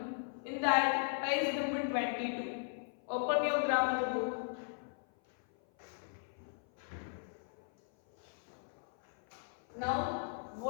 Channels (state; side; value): silent; right; 53 dB below the other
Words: In that, page number 22. Open your grammar book. Now,